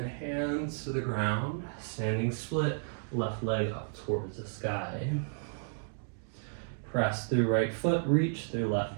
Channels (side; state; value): left; silent; digital silence